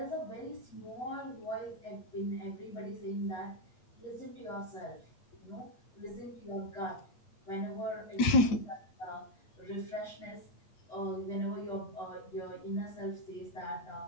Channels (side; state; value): right; late; 9.0 ms